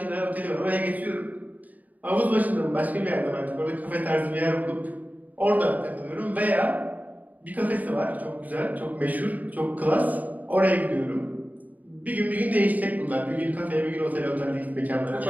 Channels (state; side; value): late; left; 0.077 ms